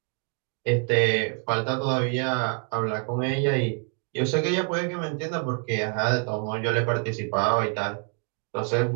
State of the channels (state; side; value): quieter; left; 39.9 dB